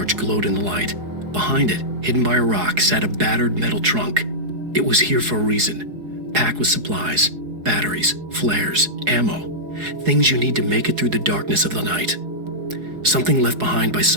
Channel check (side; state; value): left; late; 4.8 ms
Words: glowed in the light. Behind it, hidden by a rock, sat a battered metal trunk. It was here for a reason, packed with supplies, batteries, flares, ammo, things you need to make it through the darkness of the night. Something left behind by